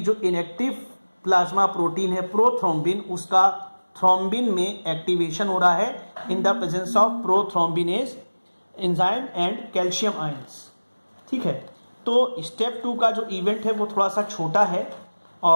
इनएक्टिव प्लाज्मा प्रोटीन है प्रोथ्रोम्बिन, उसका थ्रोम्बिन में एक्टिवेशन हो रहा है in the presence of prothrombinase enzyme and calcium ions. ठीक है, तो स्टेप 2 का जो इवेंट है वो थोड़ा सा छोटा है,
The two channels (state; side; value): inverted; both; correlation -1.00